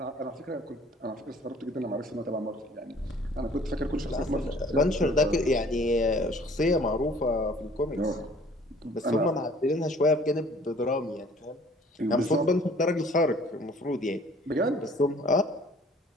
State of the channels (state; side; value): normal; both; correlation 0.54